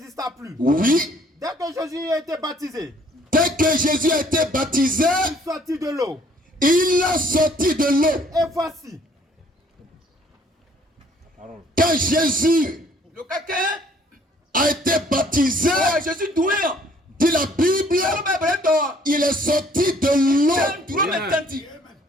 plus. Oui. Dès que Jésus a été baptisé. Dès que Jésus a été baptisé. Il sortit de l'eau. Il a sorti de l'eau. Et voici. Quand Jésus a été baptisé, dit la Bible, il est sorti de l'eau.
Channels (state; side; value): normal; both; correlation 0.60